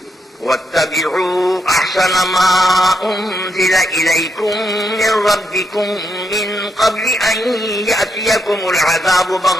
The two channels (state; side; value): normal; both; correlation 0.80